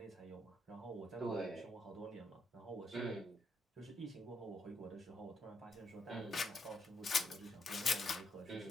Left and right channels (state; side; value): normal; both; correlation 0.77